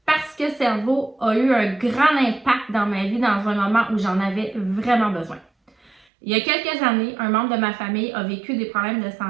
parce que Cerveau a eu un grand impact dans ma vie dans un moment où j'en avais vraiment besoin. Il y a quelques années, un membre de ma famille a vécu des problèmes de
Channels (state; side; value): drops out; left; at 6.1 s